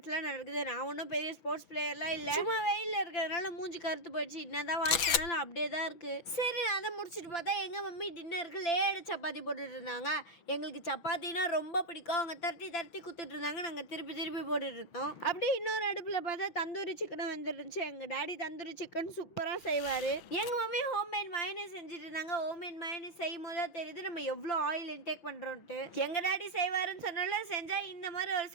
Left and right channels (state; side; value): late; right; 6.2 ms